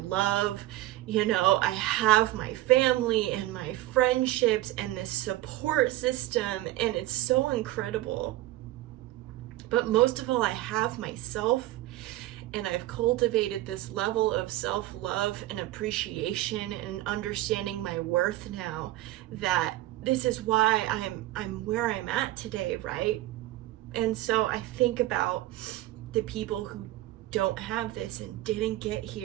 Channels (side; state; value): left; quieter; 16.0 dB